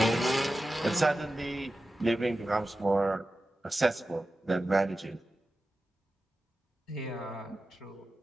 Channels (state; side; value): normal; both; correlation 0.93